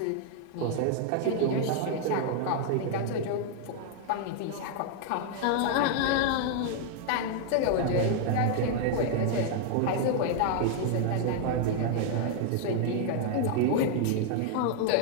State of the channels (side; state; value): both; different; correlation 0.00